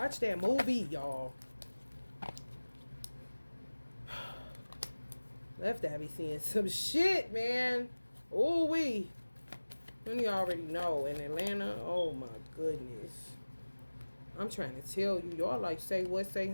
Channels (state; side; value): inverted; both; correlation -1.00